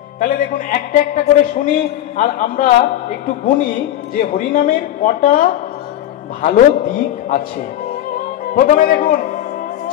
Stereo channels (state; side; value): quieter; right; 12.4 dB